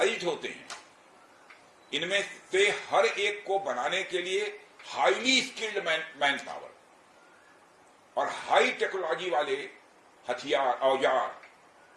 होते हैं, इनमें से हर एक को बनाने के लिए हाईली स्किल्ड मैन पावर और हाई टेक्नोलॉजी वाले हथियार, औजार,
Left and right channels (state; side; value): identical; both; correlation 1.00